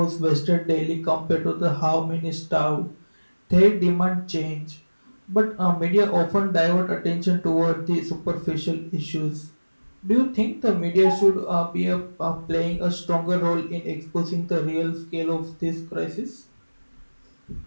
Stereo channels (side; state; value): both; inverted; correlation -1.00